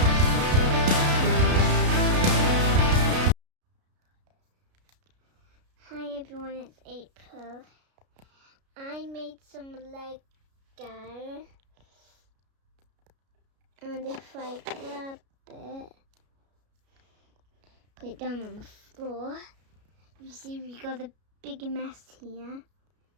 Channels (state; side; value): late; left; 33 ms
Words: Hi everyone, it's April. I made some Lego, and if I grab it, put it down on the floor, you see we got a big mess here.